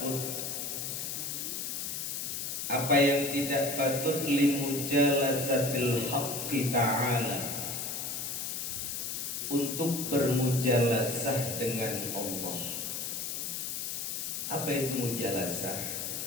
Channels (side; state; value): left; noise; hiss, 3 dB below the sound